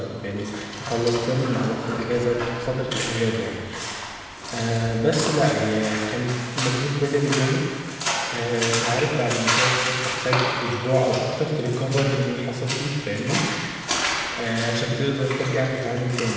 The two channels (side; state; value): both; identical; correlation 1.00